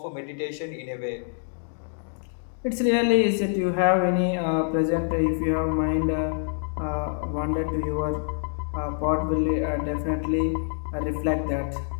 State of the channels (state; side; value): silent; right; digital silence